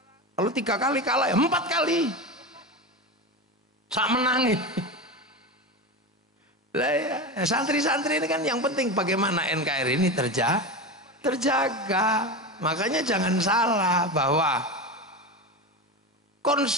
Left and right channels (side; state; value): both; normal; correlation 0.22